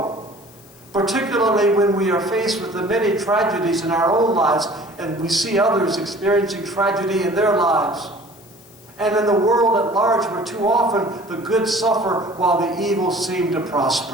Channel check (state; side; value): noise; left; hiss, 26 dB below the sound